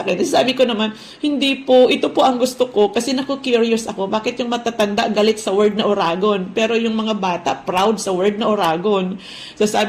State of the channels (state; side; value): identical; both; correlation 1.00